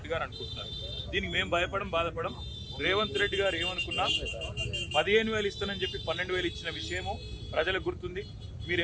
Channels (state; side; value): identical; both; correlation 1.00